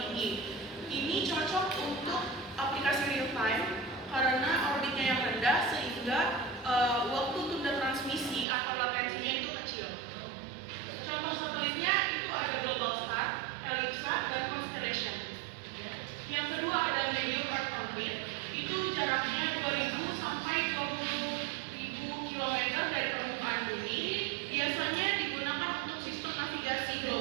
Ini cocok untuk aplikasi real time karena orbitnya yang rendah sehingga waktu tunda transmisi atau latensinya itu kecil. Contoh satelitnya itu ada Globalstar, Ellipsat, dan Constellation. Yang kedua ada medium Earth orbit, itu jaraknya 2000 sampai 20.000 km dari permukaan bumi. Biasanya digunakan untuk sistem navigasi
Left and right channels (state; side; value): drops out; left; at 8.5 s